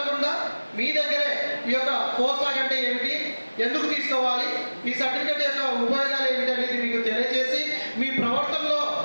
మీ దగ్గరే ఈ యొక్క పోస్ట్ డాక్ అంటే ఏమిటి, ఎందుకు తీసుకోవాలి, ఈ సర్టిఫికేట్ యొక్క ఉపయోగాలు ఏమిటి అనేది మీకు తెలియజేసి మీ ప్రవర్తనలో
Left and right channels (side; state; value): both; inverted; correlation -1.00